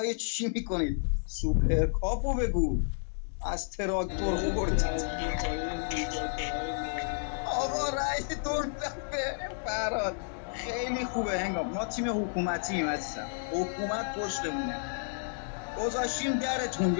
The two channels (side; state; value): right; silent; digital silence